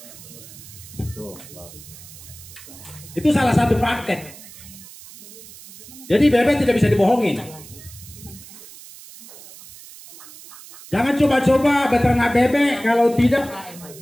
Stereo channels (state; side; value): noise; right; hiss, 18 dB below the sound